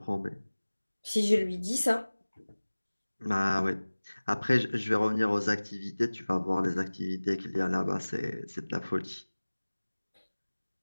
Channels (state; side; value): inverted; both; correlation -1.00